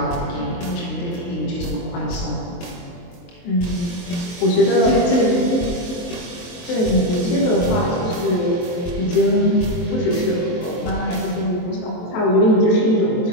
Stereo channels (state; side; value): late; right; 23 ms